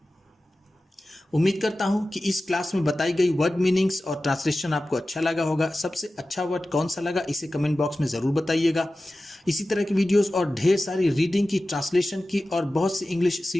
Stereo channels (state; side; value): normal; both; correlation 0.95